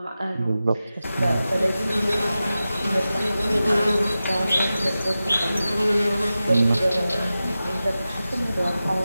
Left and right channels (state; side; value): inverted; both; correlation -0.94